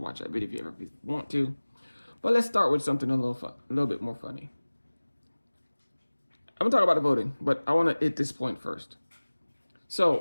watch that video if you ever want to. But let's start with something a little bit more funny. I'm gonna talk about the voting, but I want to hit this point first.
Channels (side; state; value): both; inverted; correlation -1.00